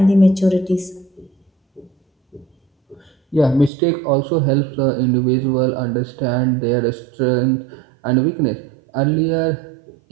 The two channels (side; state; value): left; drops out; at 3.7 s